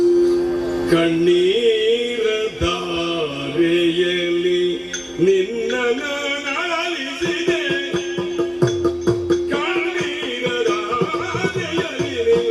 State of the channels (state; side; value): identical; both; correlation 1.00